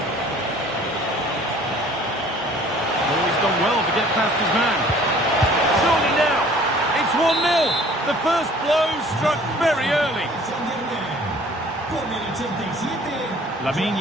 Oh, he's done well to get past his man. Surely now, it's 1-0. The first blow struck very early. Lamine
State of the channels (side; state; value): both; normal; correlation 0.52